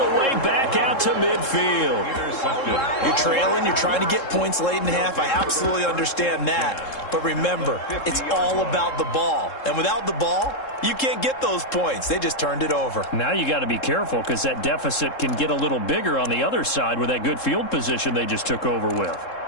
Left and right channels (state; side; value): late; right; 3.7 ms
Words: the way back out to midfield. You're trailing. You're trying to get points late in the half. I absolutely understand that. But remember, it's all about the ball. And without the ball, you can't get those points. They just turned it over. Now you got to be careful because that deficit can get a little bigger on the other side with that good field position they just took over with.